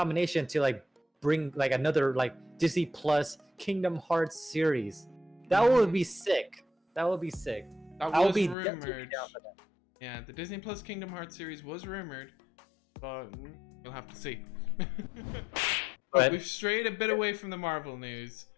to like bring like another like Disney Plus Kingdom Hearts series. That would be sick. That would be sick. That I would was be definitely rumored. down for that. Yeah, the Disney Plus Kingdom Hearts series was rumored, but we'll have to see. But we've strayed a bit away from the Marvel news,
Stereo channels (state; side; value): drops out; right; at 8.6 s